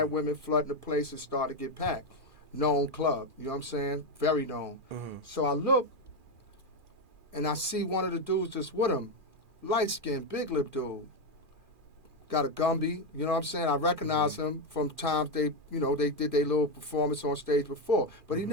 women flooding the place and started to get packed. Known club, you know what I'm saying? Very known. So I look, and I see one of the dudes that's with him, light-skinned, big lip dude. Got a Gumby, you know what I'm saying? I recognize him from times they did their little performance on stage before. But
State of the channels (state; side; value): late; left; 2.4 ms